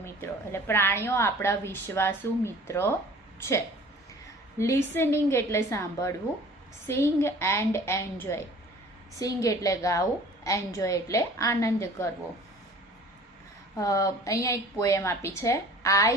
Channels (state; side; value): normal; both; correlation 0.47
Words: મિત્રો, એટલે પ્રાણીઓ આપણા વિશ્વાસુ મિત્રો છે. લિસનિંગ એટલે સાંભળવું, સિંગ એન્ડ એન્જોય. સિંગ એટલે ગાવું, એન્જોય એટલે આનંદ કરવો. અહીંયા એક પોએમ આપી છે,